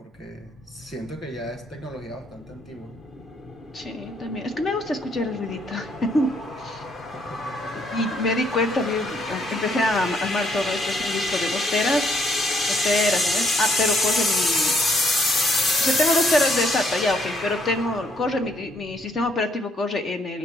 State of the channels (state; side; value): normal; both; correlation 0.68